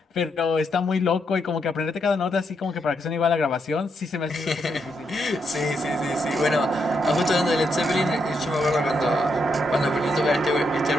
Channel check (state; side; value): normal; both; correlation 0.79